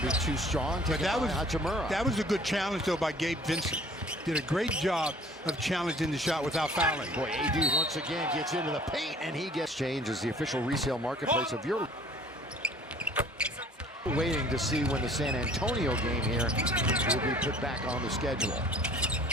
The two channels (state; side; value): normal; both; correlation 0.52